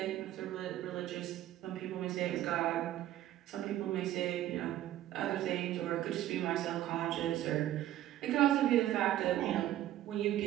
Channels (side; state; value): left; quieter; 13.4 dB